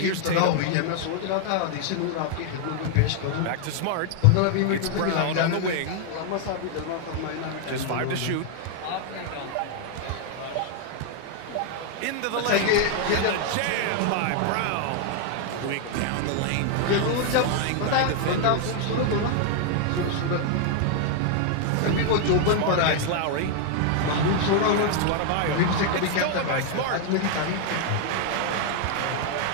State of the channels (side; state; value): both; different; correlation 0.00